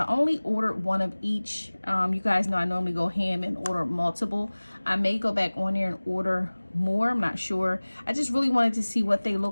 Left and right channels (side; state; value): both; inverted; correlation -1.00